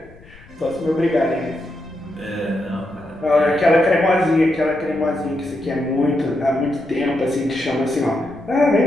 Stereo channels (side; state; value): left; noise; rumble, 23 dB below the sound